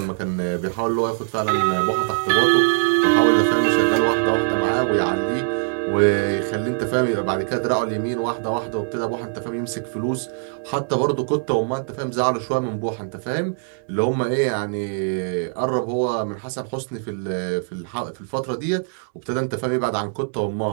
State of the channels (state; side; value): silent; left; digital silence